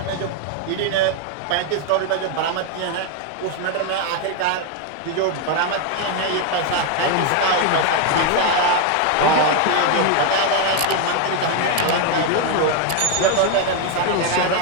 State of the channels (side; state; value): both; different; correlation 0.01